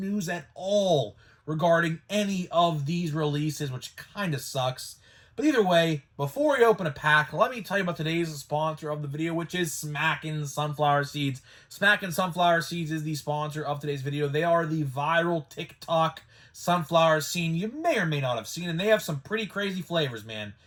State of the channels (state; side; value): identical; both; correlation 1.00